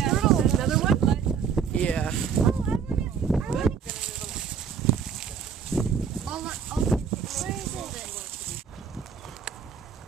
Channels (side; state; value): left; quieter; 6.9 dB